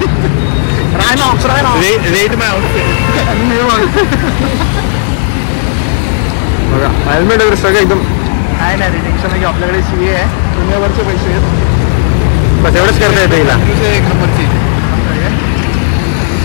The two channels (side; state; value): right; silent; digital silence